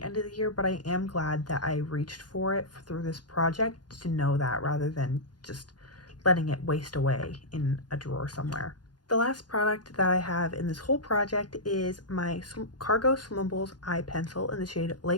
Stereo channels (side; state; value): right; late; 0.70 ms